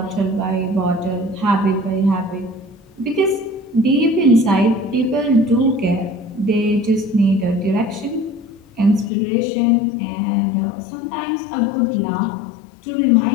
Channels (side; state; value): right; drops out; at 9.1 s